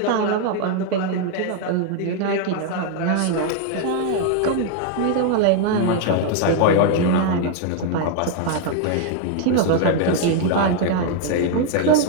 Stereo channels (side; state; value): both; different; correlation 0.00